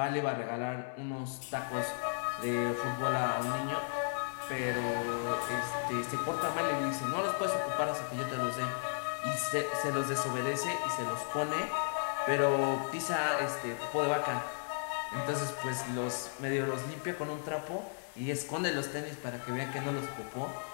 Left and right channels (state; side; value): silent; right; digital silence